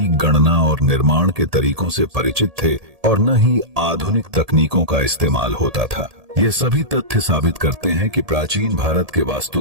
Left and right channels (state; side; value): late; left; 1.7 ms